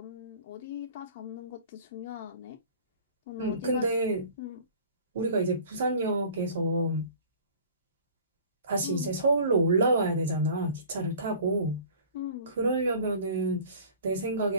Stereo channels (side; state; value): both; inverted; correlation -0.46